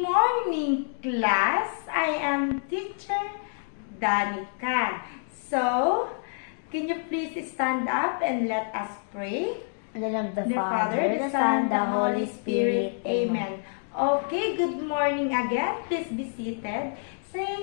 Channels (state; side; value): silent; right; digital silence